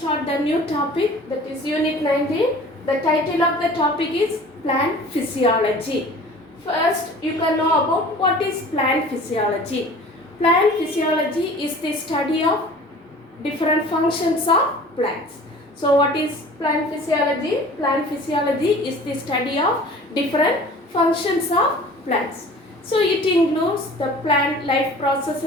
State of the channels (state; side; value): normal; both; correlation 0.44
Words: the new topic, that is unit 19. The title of the topic is plant physiology. First you can know about what is plant physiology. Plant physiology is the study of different functions of plants. So what is plant physiology? Plant physiology is the study of different functions of plants. So it includes the plant life